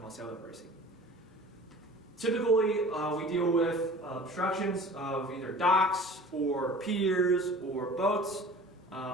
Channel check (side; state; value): both; normal; correlation 0.43